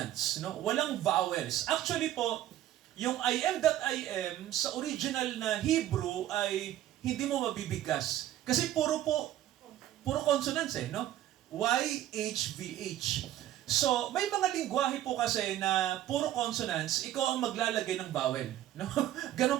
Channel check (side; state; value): left; quieter; 12.9 dB